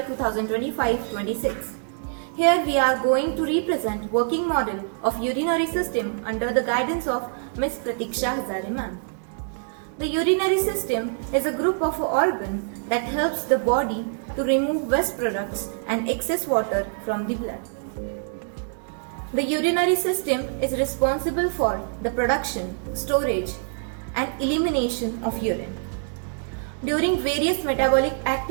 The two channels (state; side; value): silent; left; digital silence